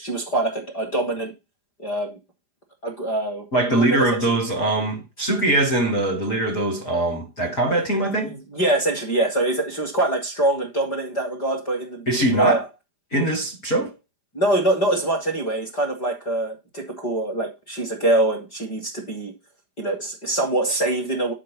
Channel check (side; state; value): right; late; 5.0 ms